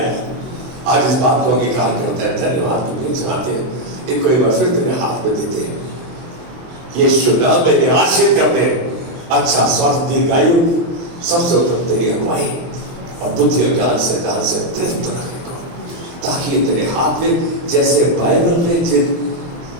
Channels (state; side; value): late; left; 23 ms